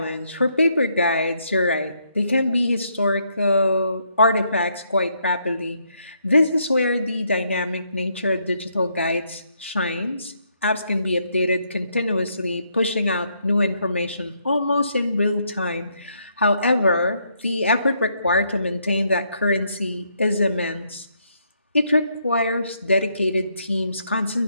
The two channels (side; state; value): both; inverted; correlation -0.74